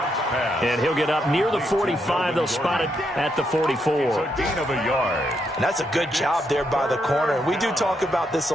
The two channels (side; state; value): both; normal; correlation 0.79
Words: And he'll get up near the 45. They'll spot it at the 44. Gain of a yard. And that's a good job there by the corner. We do talk about this